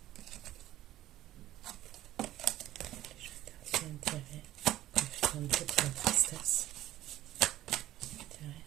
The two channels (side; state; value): left; quieter; 14.2 dB